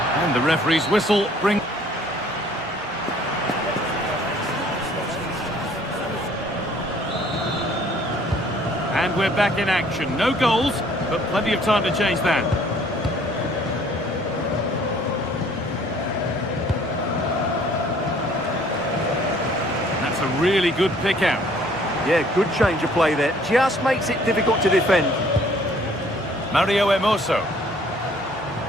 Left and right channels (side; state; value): both; normal; correlation 0.58